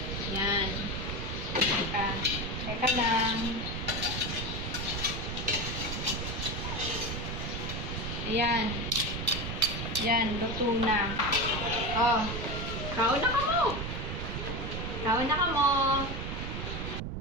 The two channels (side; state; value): right; noise; rumble, 4 dB below the sound